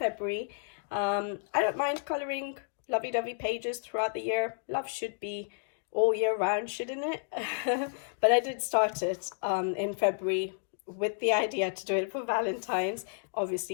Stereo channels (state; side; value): silent; right; digital silence